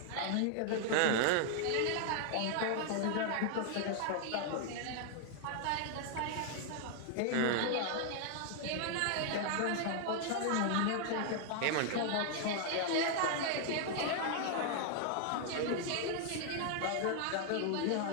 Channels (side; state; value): both; different; correlation 0.00